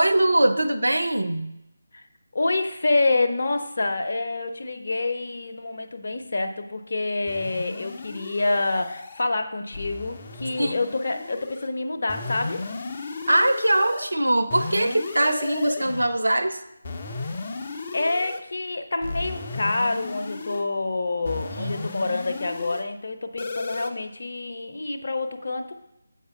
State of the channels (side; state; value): both; inverted; correlation -0.94